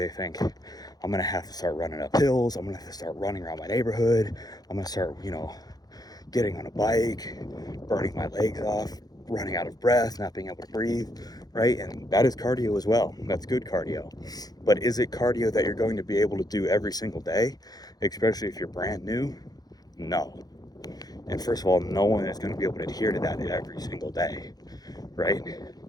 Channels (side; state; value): right; late; 0.19 ms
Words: think, I'm gonna have to start running up hills. I'm gonna have to start running around my neighborhood. I'm gonna start, getting on a bike, burning my legs off, running out of breath, not being able to breathe, right? And that is cardio as well. That's good cardio. But is it cardio that you're going to be able to do every single day, especially if you're brand new? No. And first of all, no one is going to be able to adhere to that every single day, right?